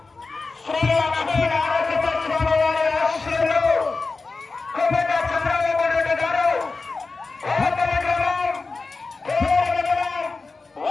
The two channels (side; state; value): right; quieter; 4.0 dB